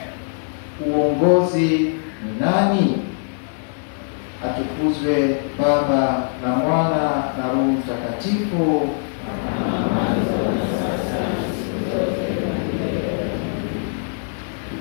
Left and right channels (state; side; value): silent; right; digital silence